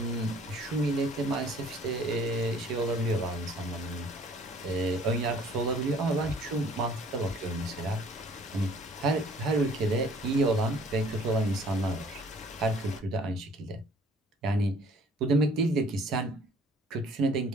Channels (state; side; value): normal; both; correlation 0.56